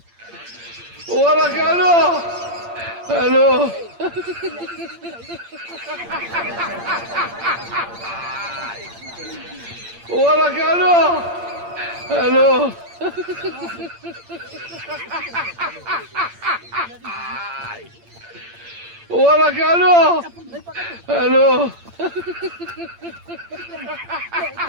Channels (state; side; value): late; left; 8.7 ms